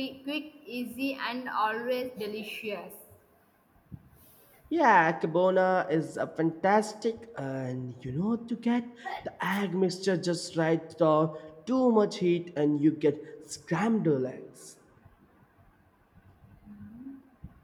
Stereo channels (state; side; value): identical; both; correlation 1.00